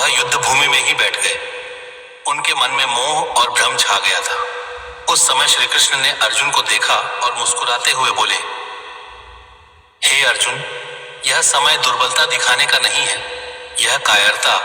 युद्ध भूमि में ही बैठ गए। उनके मन में मोह और भ्रम छा गया था। उस समय श्री कृष्ण ने अर्जुन को देखा और मुस्कुराते हुए बोले, हे अर्जुन, यह समय दुर्बलता दिखाने का नहीं है। यह कायरता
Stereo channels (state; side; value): identical; both; correlation 1.00